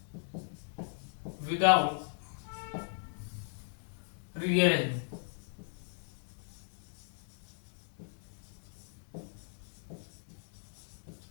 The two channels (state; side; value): silent; right; digital silence